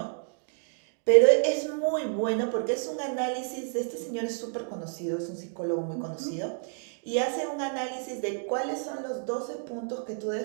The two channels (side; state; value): left; silent; digital silence